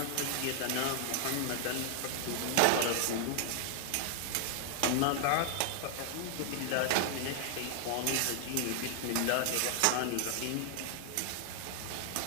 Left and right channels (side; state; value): both; different; correlation 0.00